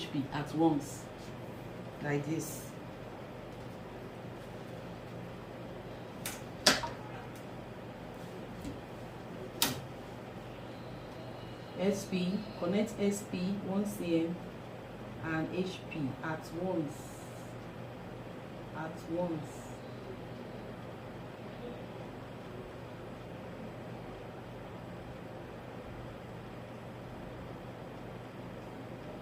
at once, like this. Connect SP 1 cm and HP at once.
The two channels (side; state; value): both; identical; correlation 1.00